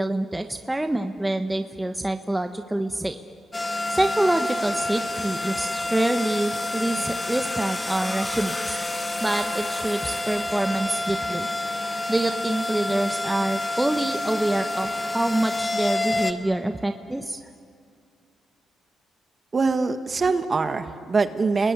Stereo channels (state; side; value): normal; both; correlation 0.95